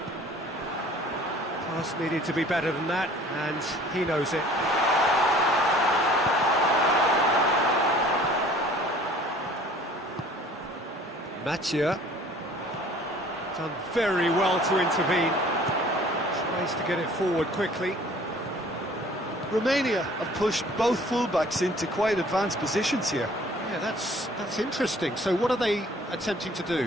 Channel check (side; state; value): both; normal; correlation 0.51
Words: Pass needed to be better than that, and he knows it. Mathieu done very well to intervene. Tries to get it forward quickly. Romania have pushed both fullbacks into quite advanced positions here. Yeah, that's interesting. So what are they attempting to